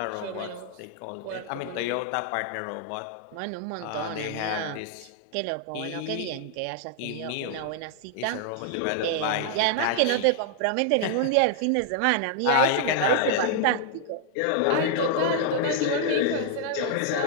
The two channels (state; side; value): different; both; correlation 0.00